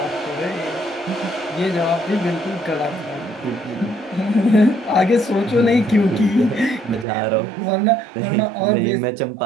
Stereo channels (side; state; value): left; drops out; at 7.1 s